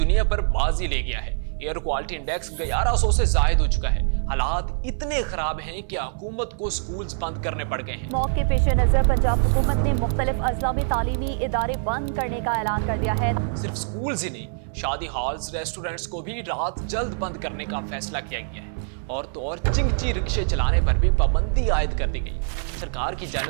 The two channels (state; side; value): silent; left; 62 dB below the other